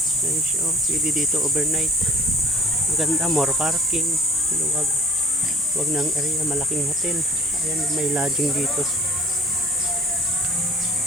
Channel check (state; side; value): normal; both; correlation 0.52